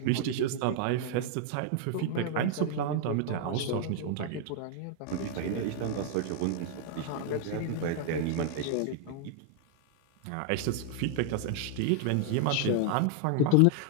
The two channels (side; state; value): both; different; correlation 0.00